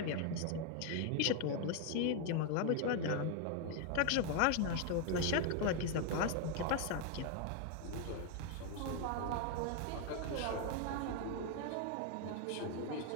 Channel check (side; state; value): both; different; correlation 0.01